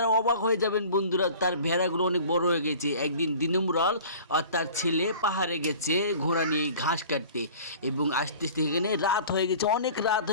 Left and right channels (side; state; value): both; inverted; correlation -0.44